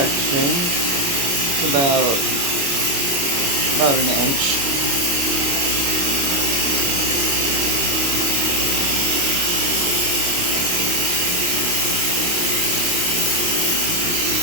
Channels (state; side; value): late; left; 28 ms